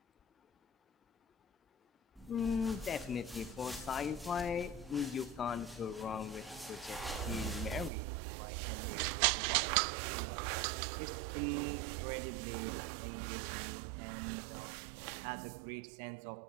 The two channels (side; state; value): left; drops out; at 7.9 s